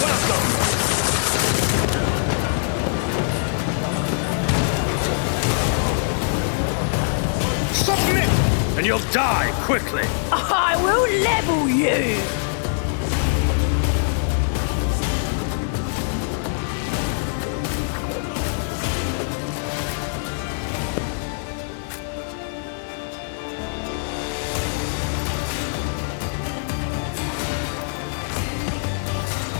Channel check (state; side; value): silent; right; digital silence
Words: welcome? Submit, and you'll die quickly. I will level you.